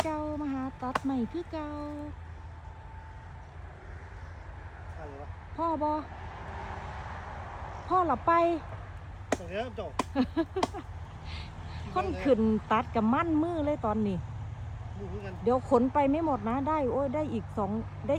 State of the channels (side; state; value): both; identical; correlation 1.00